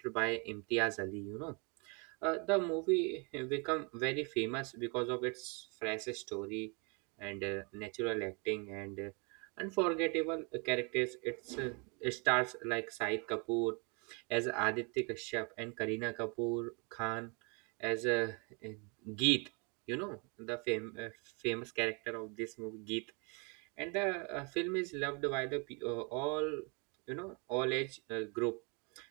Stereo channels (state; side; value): quieter; left; 33.3 dB